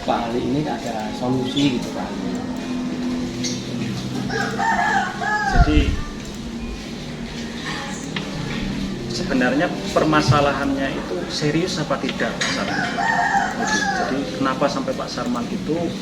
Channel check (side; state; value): both; identical; correlation 1.00